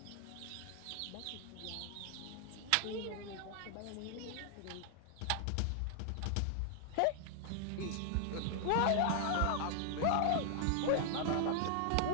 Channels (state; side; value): different; both; correlation 0.00